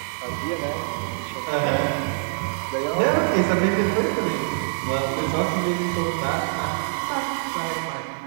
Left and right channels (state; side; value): silent; left; digital silence